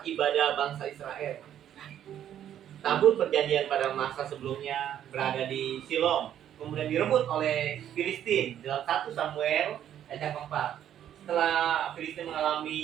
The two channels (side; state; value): left; quieter; 10.5 dB